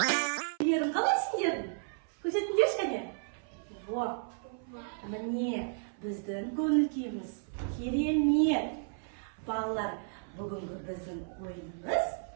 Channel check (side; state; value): left; silent; 56 dB below the other